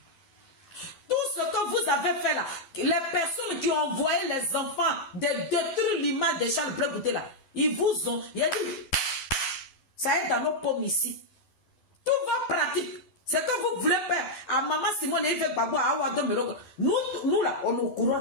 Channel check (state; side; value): late; right; 12 ms